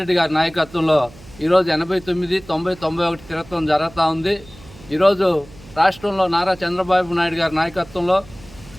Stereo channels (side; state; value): right; noise; hum, 21 dB below the sound